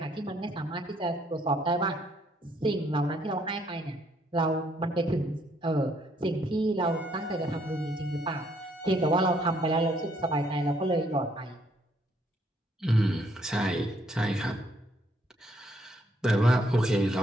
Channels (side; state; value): both; normal; correlation 0.69